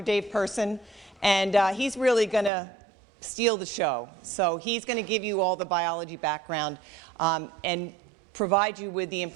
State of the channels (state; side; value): drops out; left; at 2.5 s